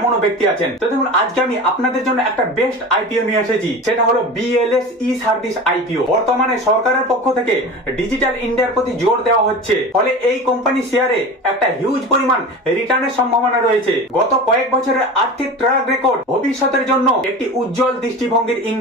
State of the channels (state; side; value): normal; both; correlation 0.32